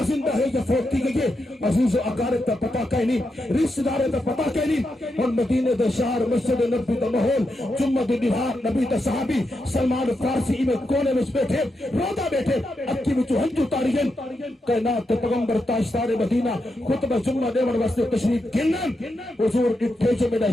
زندہ ہے یا فوت تھی گئی عزیز و اقارب تا پتہ کہیں نہیں رشتہ دار تا پتہ کہیں نہیں اور مدینے دے شہر مسجد نبی دا ماحول جمعہ دی نہار نبی دا صحابی سلمان فارسی میں کونے میں بیٹھے رودا بیٹھے اکی میں ہنجو تاریخ کائنات پیغمبر تاجدار مدینہ خطبہ جمعہ دیور واسطے تشریف گنن حضور اٹھے جو میرا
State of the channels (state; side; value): normal; both; correlation 0.85